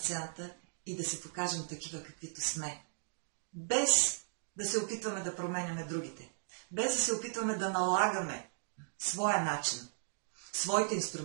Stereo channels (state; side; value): silent; left; digital silence